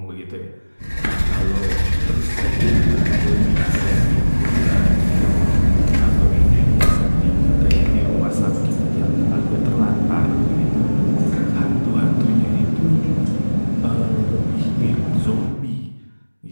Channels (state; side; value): inverted; both; correlation -1.00